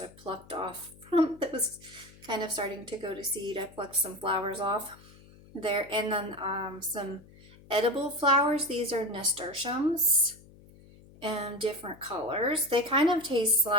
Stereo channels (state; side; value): noise; left; hum, 23 dB below the sound